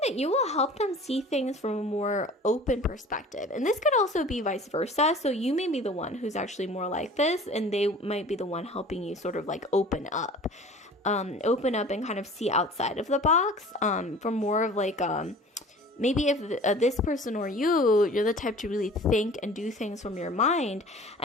that you will help them see things from a more open perspective. And this could also be vice versa. So you may be the one who's actually more like this, and they might be the one helping you sort of like open up and kind of see outside of the box, for more of like, maybe if this person or you're the type to really think and do things from your mind.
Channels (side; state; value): both; normal; correlation 0.44